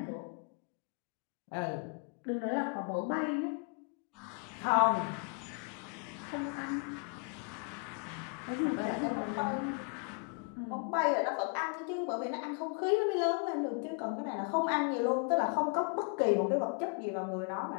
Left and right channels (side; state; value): right; quieter; 36.4 dB